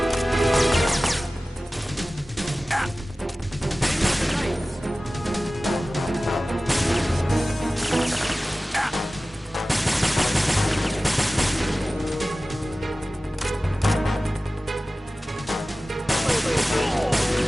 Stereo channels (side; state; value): both; normal; correlation 0.96